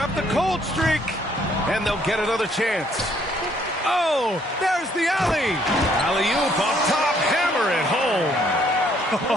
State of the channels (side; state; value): both; normal; correlation 0.66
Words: the cold streak. And they'll get another chance. Oh, there's the alley. Alley-oop up top. Hammer it home.